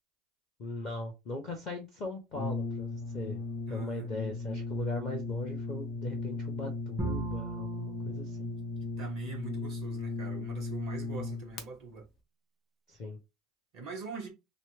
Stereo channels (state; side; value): normal; both; correlation 0.47